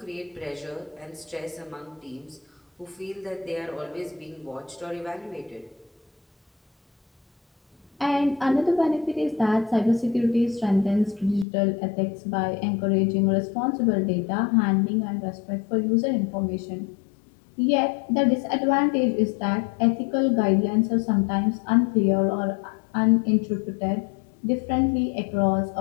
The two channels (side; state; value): right; drops out; at 11.5 s